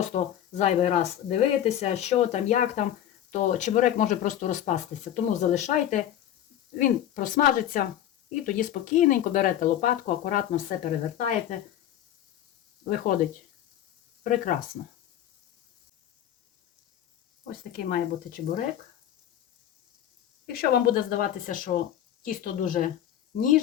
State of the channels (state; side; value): quieter; right; 11.2 dB